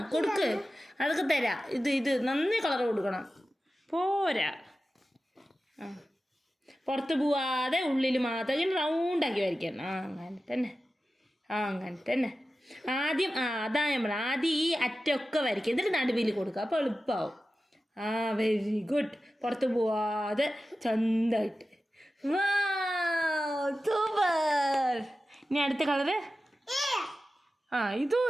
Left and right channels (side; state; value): both; normal; correlation 0.94